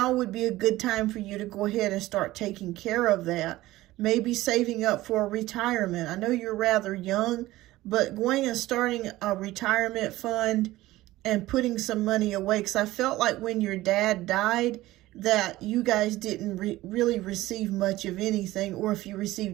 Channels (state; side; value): quieter; left; 17.0 dB